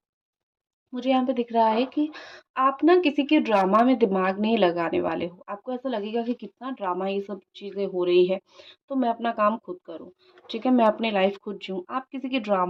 मुझे यहाँ पे दिख रहा है कि आप ना किसी के ड्रामा में दिमाग नहीं लगाने वाले हो। आपको ऐसा लगेगा कि कितना ड्रामा ये सब चीज़ें हो रही है, तो मैं अपना काम खुद करूँ, ठीक है, मैं अपनी लाइफ खुद जीऊँ। आप किसी की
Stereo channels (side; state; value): both; identical; correlation 1.00